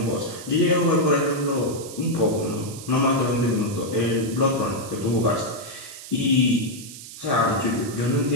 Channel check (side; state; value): right; noise; hiss, 14 dB below the sound